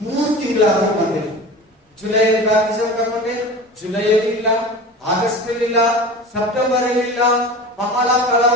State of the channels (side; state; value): both; normal; correlation 0.34